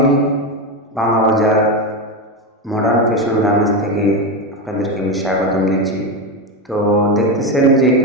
বাংলা বাজার মডার্ন ফ্যাশন গার্মেন্টস থেকে আপনাদেরকে আমি স্বাগতম দিচ্ছি। তো দেখতেছেন যে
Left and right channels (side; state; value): both; normal; correlation 0.13